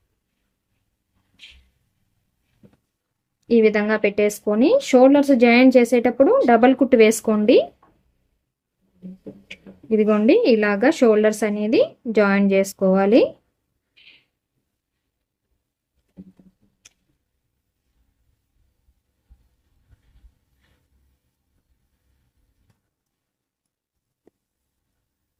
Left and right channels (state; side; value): identical; both; correlation 1.00